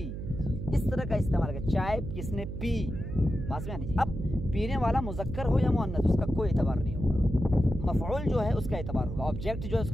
इस तरह का इस्तेमाल कर। चाय किसने पी, बात में आनी। अब पीने वाला मुज़क्कर हो या मुअन्नस उसका कोई एतबार नहीं होगा। मफ़ऊल जो है उसका एतबार होगा, ऑब्जेक्ट जो है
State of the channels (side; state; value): right; noise; hum, 6 dB below the sound